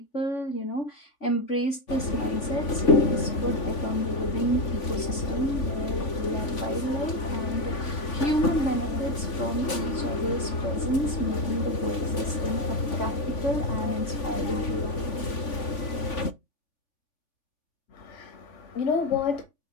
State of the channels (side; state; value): right; late; 3.5 ms